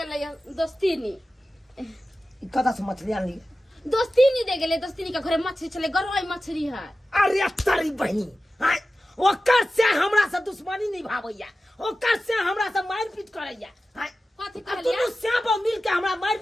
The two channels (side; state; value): both; normal; correlation 0.94